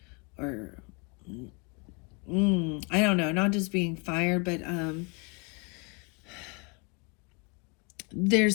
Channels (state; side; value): quieter; right; 32.0 dB